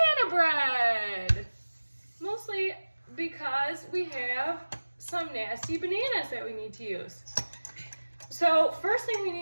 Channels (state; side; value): inverted; both; correlation -1.00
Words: bread. Mostly because we have some nasty bananas that we need to use. So first thing we